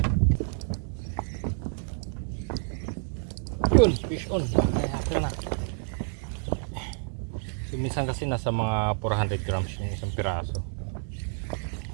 Yun, fish on. Kaya na. So, minsan kasi nasa mga 400 grams yung isang piraso.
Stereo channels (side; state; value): left; silent; digital silence